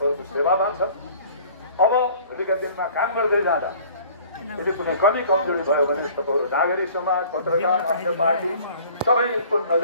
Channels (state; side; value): inverted; both; correlation -0.50